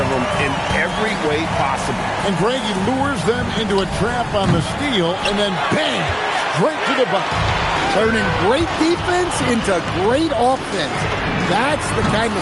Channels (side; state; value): both; identical; correlation 1.00